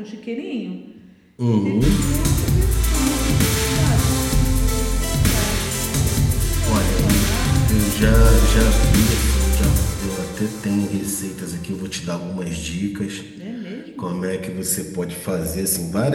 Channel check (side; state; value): both; identical; correlation 1.00